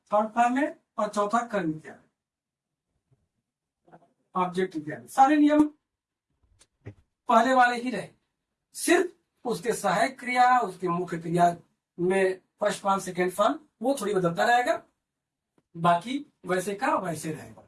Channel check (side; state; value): both; identical; correlation 1.00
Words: फॉर्म में, और चौथा कर्म क्रिया, ऑब्जेक्ट क्रिया। सारे नियम पहले वाले ही रहे, सिर्फ उसके सहायक क्रिया, उसके मुख्य क्रिया में फर्स्ट फॉर्म सेकेंड फॉर्म वो थोड़ी बदलता रहेगा, बाकी वैसे का वैसे रहेगा।